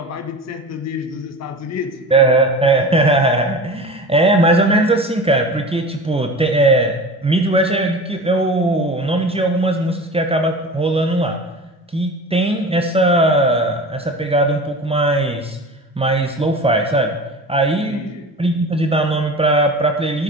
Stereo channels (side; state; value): both; normal; correlation 0.34